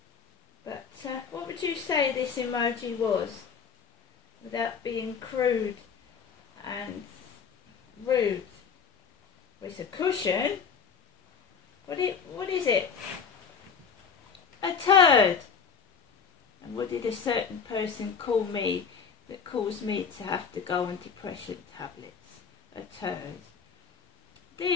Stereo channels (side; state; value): right; quieter; 6.2 dB